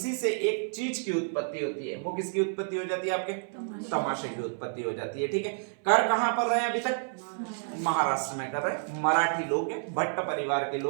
से एक चीज की उत्पत्ति होती है। वो किसकी उत्पत्ति हो जाती है? आपके तमाशे की उत्पत्ति हो जाती है। ठीक है, कर कहां पर रहे हैं अभी तक? महाराष्ट्र में कर रहे हैं, मराठी लोग हैं, भट्ट परिवार के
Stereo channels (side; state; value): left; silent; 58 dB below the other